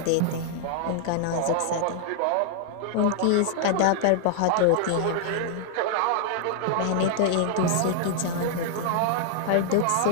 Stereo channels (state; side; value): different; both; correlation -0.01